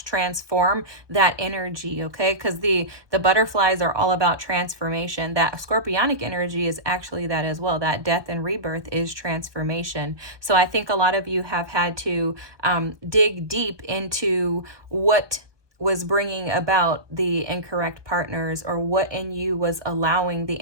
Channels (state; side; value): late; left; 1.2 ms